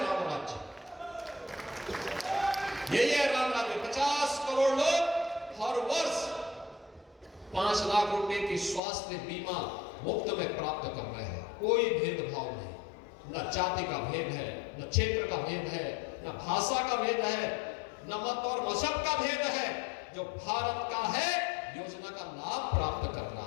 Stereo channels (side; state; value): right; drops out; at 8.8 s